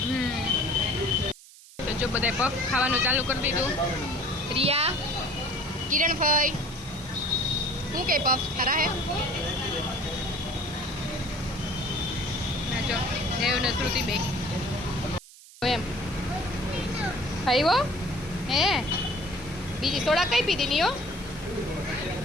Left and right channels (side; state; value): right; noise; hiss, 20 dB below the sound